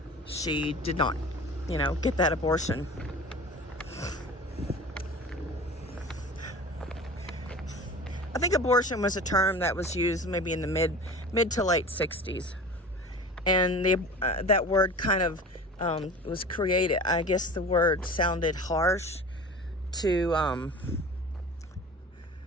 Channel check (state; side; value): normal; both; correlation 0.38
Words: she did not, you know, get that abortion. I think abortion was a term that was used maybe in the mid to late 60s. And that word kind of was created. I guess the word sounded harsh to,